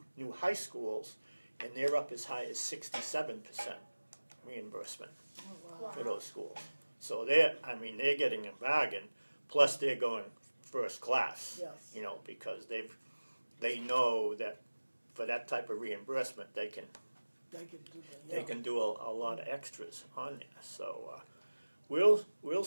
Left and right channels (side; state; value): both; inverted; correlation -1.00